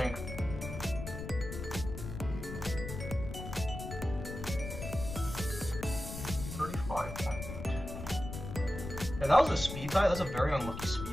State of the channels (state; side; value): noise; left; rumble, 8 dB below the sound